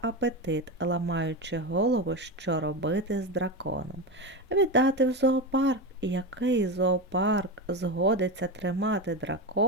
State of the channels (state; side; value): normal; both; correlation 0.18